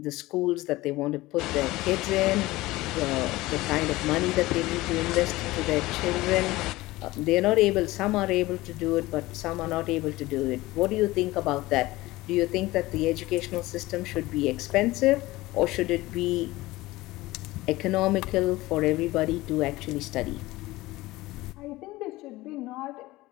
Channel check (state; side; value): quieter; right; 19.0 dB